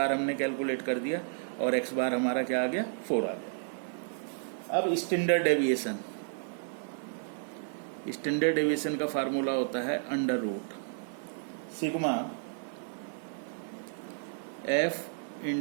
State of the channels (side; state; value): left; silent; digital silence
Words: हमने कैलकुलेट कर दिया और x बार हमारा क्या आ गया, 4 आ गया। अब स्टैंडर्ड डेविएशन का फार्मूला होता है under root sigma f